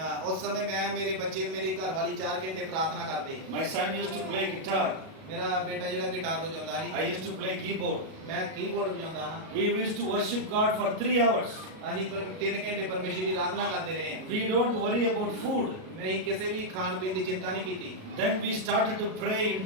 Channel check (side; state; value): left; late; 37 ms